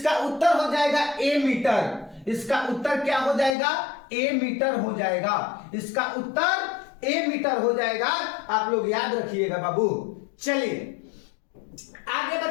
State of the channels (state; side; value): drops out; right; at 3.6 s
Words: उत्तर हो जाएगा ए मीटर। इसका उत्तर क्या हो जाएगा? ए मीटर हो जाएगा। इसका उत्तर ए मीटर हो जाएगा। आप लोग याद रखिएगा बाबू। चलिए आगे